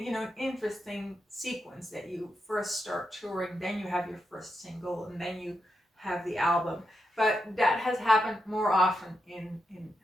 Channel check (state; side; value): normal; both; correlation 0.85